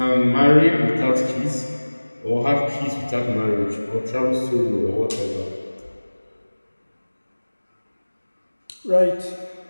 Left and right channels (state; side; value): inverted; both; correlation -1.00